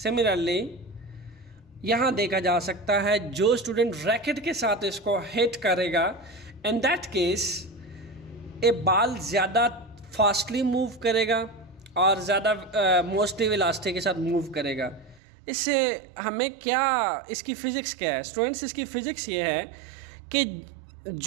यहाँ देखा जा सकता है, जो स्टूडेंट रैकेट के साथ इसको हिट करेगा, इन दैट केस ये बॉल ज़्यादा फास्टली मूव करेगा और ज़्यादा मोस्टली वेलोसिटी के साथ मूव करेगा। इससे हमें क्या, इसकी फ़िज़िक्स क्या है स्टूडेंट्स? इसकी फ़िज़िक्स ये है कि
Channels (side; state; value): left; drops out; at 15.2 s